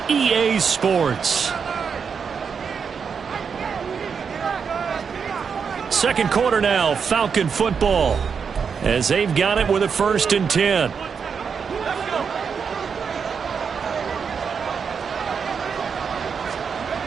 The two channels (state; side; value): quieter; left; 6.2 dB